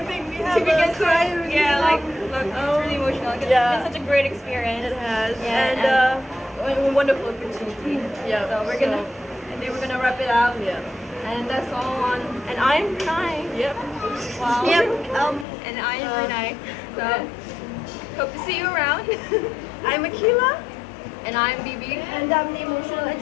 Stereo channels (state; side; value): drops out; right; at 15.5 s